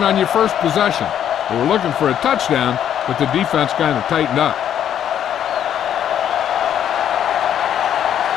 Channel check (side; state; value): right; quieter; 9.9 dB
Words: on your first possession. They were looking for a touchdown, but the defense kind of tightened up.